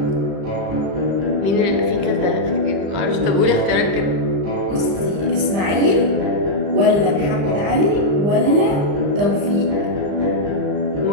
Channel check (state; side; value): late; left; 34 ms